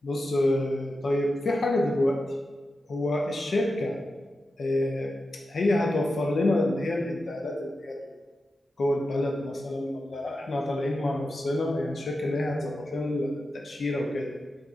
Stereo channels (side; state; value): both; normal; correlation 0.90